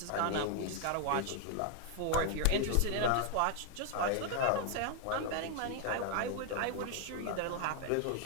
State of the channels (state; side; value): different; both; correlation 0.00